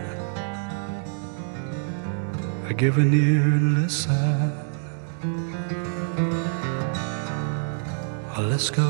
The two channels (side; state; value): left; silent; digital silence